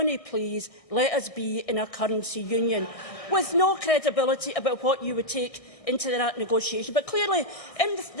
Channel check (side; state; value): right; late; 1.6 ms